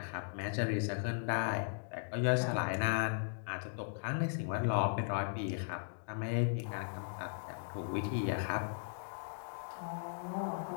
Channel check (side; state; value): right; silent; digital silence